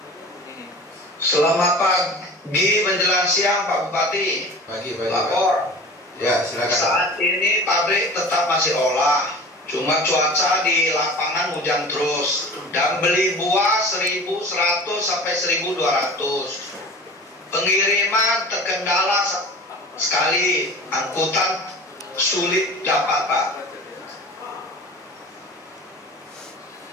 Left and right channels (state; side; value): normal; both; correlation 0.39